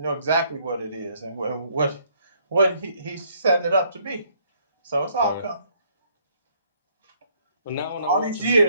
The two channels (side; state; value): both; inverted; correlation -0.67